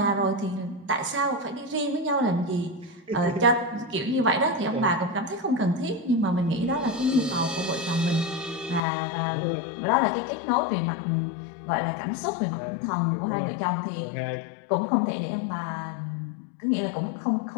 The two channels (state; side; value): drops out; right; at 8.8 s